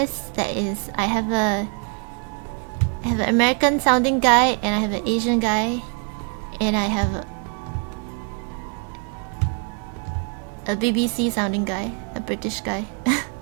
that is, I have an American sounding guy, and I have an Asian guy, and I have A BBC sounding guy, a British guy.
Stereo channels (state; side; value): quieter; left; 38.9 dB